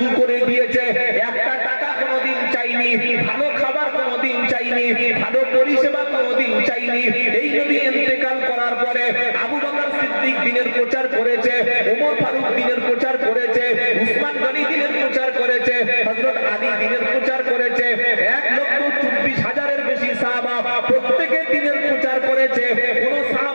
করে দিয়েছে। একটা টাকা কোনোদিন চাইনি, ভালো খাবার কোনোদিন চাইনি, ভালো পরিষেবা কোনোদিন চাইনি। এই নবী ইন্তেকাল করার পরে আবু বকর সিদ্দিক দিনের প্রচার করেছে, ওমর ফারুক দিনের প্রচার করেছে, উসমান গনি দিনের প্রচার করেছে, হযরত আলী দিনের প্রচার করেছে। 1,24,000-এর বেশি সাহাবা প্রত্যেকে দিনের প্রচার করেছে। কোন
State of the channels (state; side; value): inverted; both; correlation -1.00